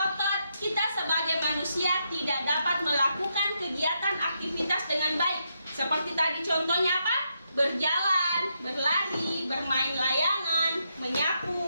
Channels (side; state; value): both; inverted; correlation -0.81